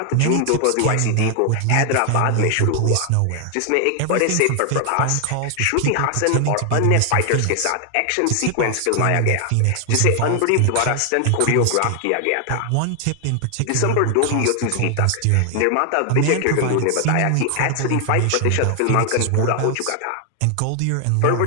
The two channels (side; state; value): both; different; correlation 0.00